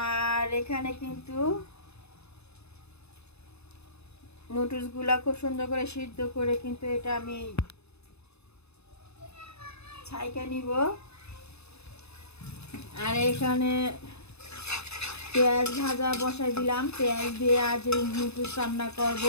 এখানে কিন্তু নুডলসগুলা খুব সুন্দর করে সিদ্ধ করে কিন্তু এটা আমি ছাইকা নিব। আর এখানে পেঁয়াজ ভাজা বসাই দিলাম। পেঁয়াজ দিয়ে আজ নুডলস রান্না করব,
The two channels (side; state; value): right; late; 0.80 ms